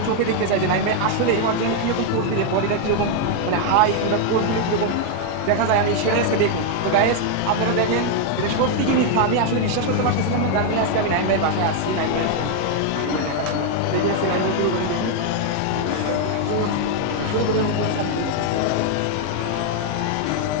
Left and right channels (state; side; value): different; both; correlation 0.00